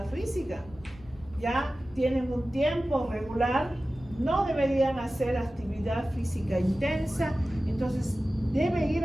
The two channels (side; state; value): right; noise; rumble, 22 dB below the sound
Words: física. Ya tienen un tiempo regular, no deberían hacer actividad física intensa, entonces debe ir